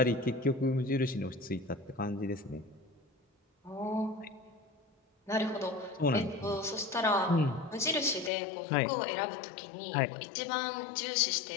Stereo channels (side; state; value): right; drops out; at 8.3 s